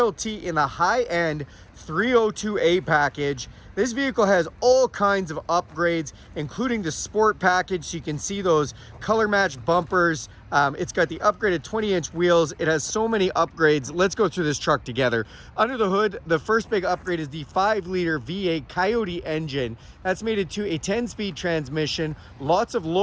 in the high-end 302A package. This vehicle has all kinds of upgrades, including the sport package. So you can see those color matched bumpers. It's got the upgraded 20-inch wheels. It has so many upgrades. Let's go through this truck together. Under the hood, the first big upgrade is the 5-liter V8 Coyote engine. That's made it to a 10-speed transmission, lots of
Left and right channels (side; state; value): both; identical; correlation 1.00